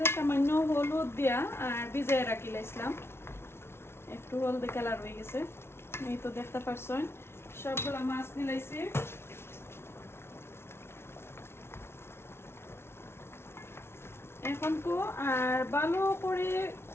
সামান্য হলুদ দিয়া আর ভিজায় রাখি লাইছিলাম একটু হলদে কালার হয়ে গেছে এই তো দেখতে পারছেন সবগুলা মাছ নিলাইছি এখন কো আর ভালো করে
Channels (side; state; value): right; late; 0.12 ms